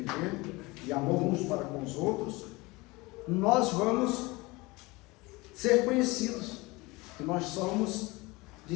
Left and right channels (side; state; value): right; quieter; 23.3 dB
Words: de amor uns para com os outros, nós vamos ser conhecidos, que nós somos